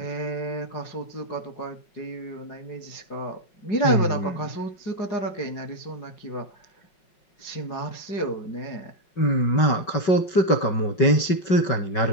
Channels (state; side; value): late; right; 5.4 ms